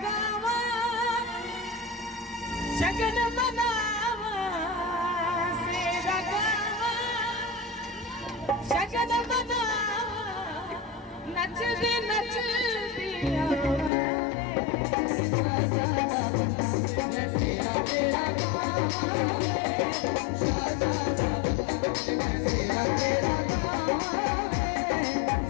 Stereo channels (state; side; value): drops out; right; at 13.9 s